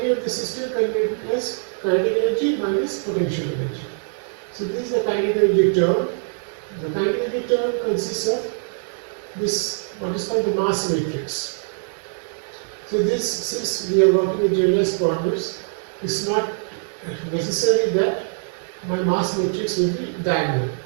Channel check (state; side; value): silent; left; digital silence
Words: of the system can be written as kinetic energy minus potential energy. So this is the kinetic energy term. The kinetic energy term consists of this, what is called the mass matrix. So this, since we are working with generalized coordinates, it's not necessary that my mass matrix will be diagonal.